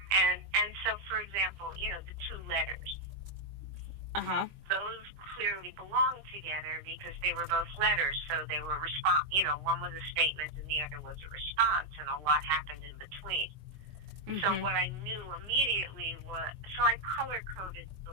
And so, for example, the two letters. Uh-huh. Those clearly belong together because they were both letters, so they were one was a statement and the other was a response, and a lot happened in between. Mm-hmm. So what I knew immediately I color-coded the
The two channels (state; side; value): late; left; 20 ms